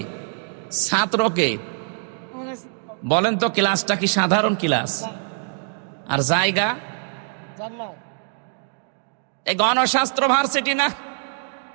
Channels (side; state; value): left; silent; digital silence